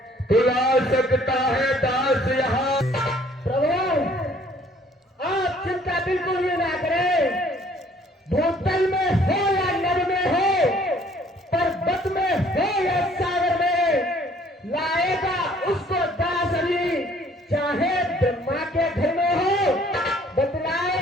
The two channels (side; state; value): both; normal; correlation 0.59